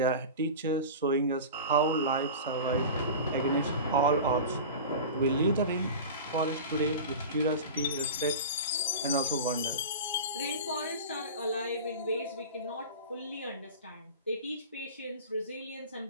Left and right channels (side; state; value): both; inverted; correlation -0.31